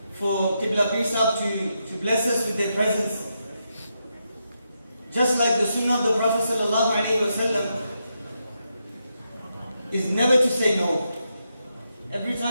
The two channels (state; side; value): inverted; both; correlation -0.84